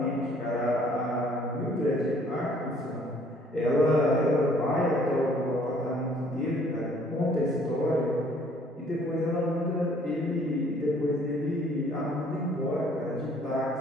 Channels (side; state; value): both; normal; correlation 0.59